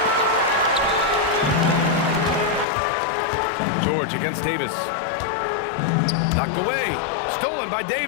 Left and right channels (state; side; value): drops out; right; at 2.7 s